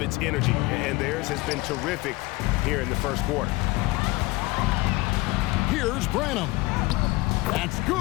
its energy, and theirs has been terrific here in the first quarter. Here's Branham. That's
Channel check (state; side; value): quieter; right; 21.0 dB